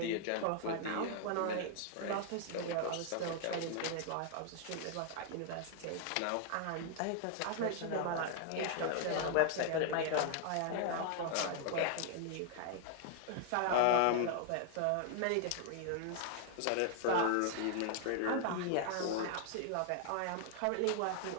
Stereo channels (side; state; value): both; different; correlation 0.00